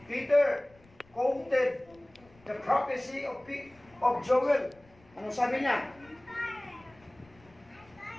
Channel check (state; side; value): noise; left; rumble, 28 dB below the sound